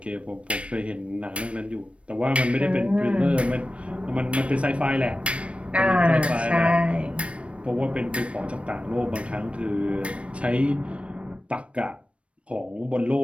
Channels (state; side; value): late; left; 0.061 ms